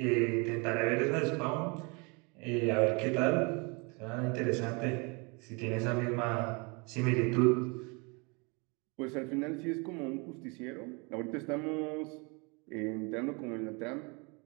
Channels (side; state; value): left; quieter; 30.8 dB